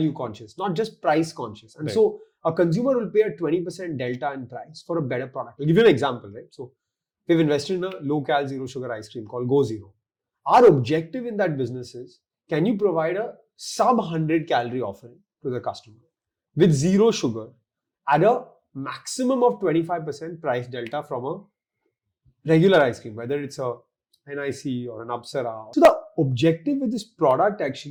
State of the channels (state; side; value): identical; both; correlation 1.00